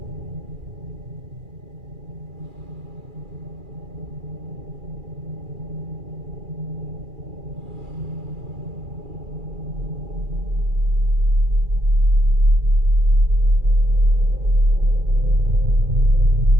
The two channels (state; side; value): late; left; 2.4 ms